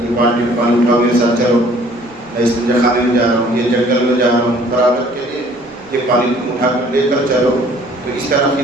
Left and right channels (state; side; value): noise; right; rumble, 29 dB below the sound